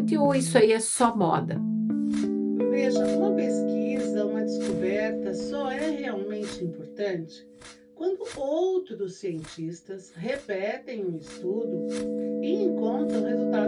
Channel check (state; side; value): identical; both; correlation 1.00